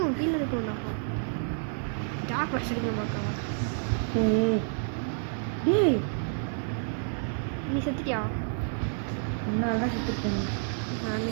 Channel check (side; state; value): left; silent; digital silence